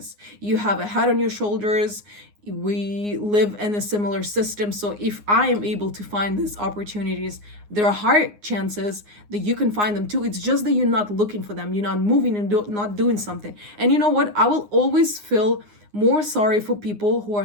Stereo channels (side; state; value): left; late; 9.7 ms